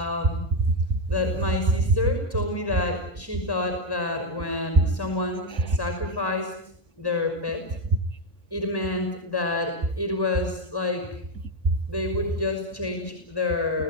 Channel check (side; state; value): right; late; 1.1 ms